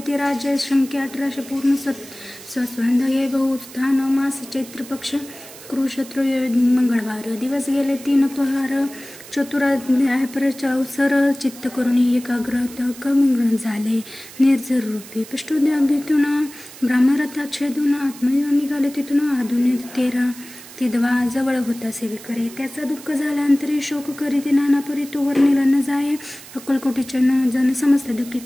राज्य संख्या 1800 पूर्ण सस्वंध हे बहुस्थान मास चैत्र पक्ष कृषत्र मंगळवार दिवस गेले 3 पहार चतुराध्याय अवसर चित्त करून एकाग्रत कमग्न झाले निर्जर रूपी पृष्ठोद्याभीतून ब्राह्मरथा छेदून आत्मयोग निघाले तिथून आधुन 13 तिदवा जवळ होता सेवेकरी त्याचा दुःख झाल्यानंतरी शोक करीत नाना परी तो वर्णिला न जाये अक्कलकोटीच्या जन समस्त दुःखी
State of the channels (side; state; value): right; noise; hiss, 17 dB below the sound